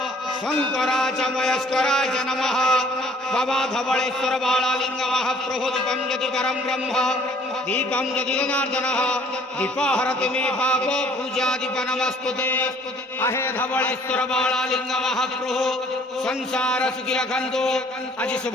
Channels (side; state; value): both; normal; correlation 0.57